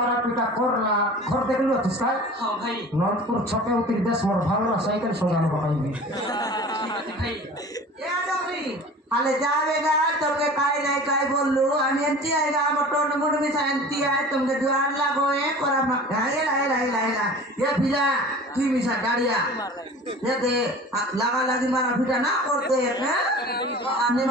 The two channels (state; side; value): normal; both; correlation 0.41